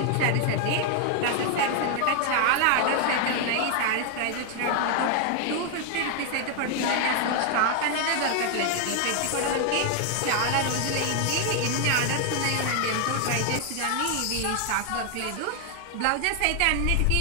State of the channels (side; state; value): both; different; correlation 0.00